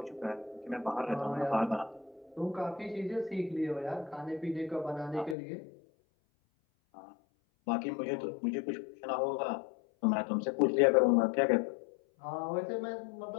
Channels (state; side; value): drops out; right; at 5.4 s